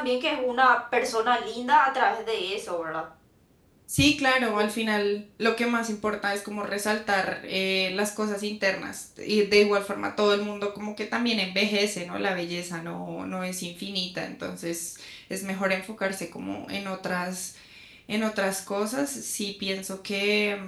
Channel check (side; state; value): both; identical; correlation 1.00